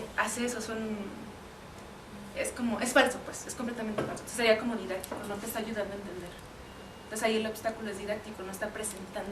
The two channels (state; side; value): identical; both; correlation 1.00